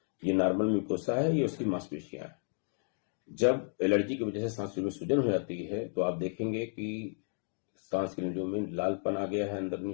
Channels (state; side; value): silent; right; 56 dB below the other